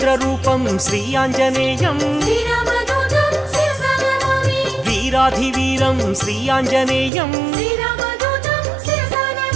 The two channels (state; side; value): drops out; left; at 7.1 s